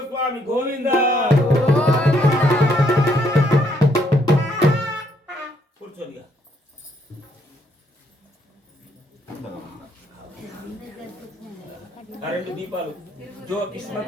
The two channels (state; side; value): normal; both; correlation 0.71